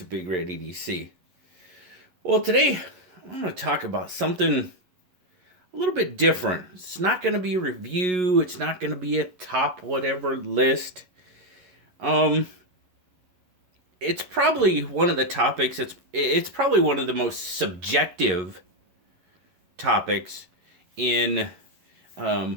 BigRedEDC. Well, today I'm going to talk about something a little bit different. It's not going to be a review. It's not going to be a top whatever list. It's probably one of the topics. It's probably one of the most subjective topics in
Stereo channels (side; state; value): left; late; 11 ms